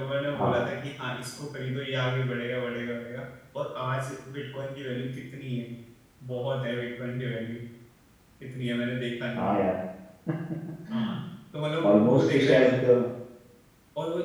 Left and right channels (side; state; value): both; identical; correlation 1.00